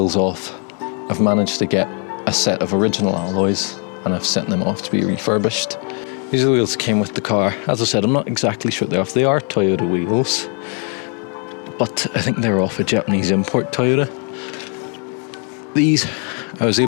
off. I've managed to get a set of original alloys and I've sent them off to be refurbished. These are the wheels that came with the car. As I said, I'm not exactly sure they're off. They are Toyota wheels, but I think they're off a Japanese import Toyota. These I was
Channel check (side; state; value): right; quieter; 39.6 dB